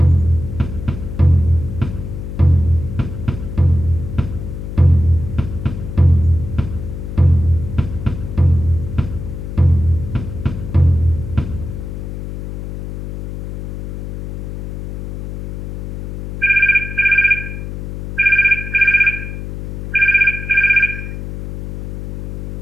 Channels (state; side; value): noise; left; hum, 7 dB below the sound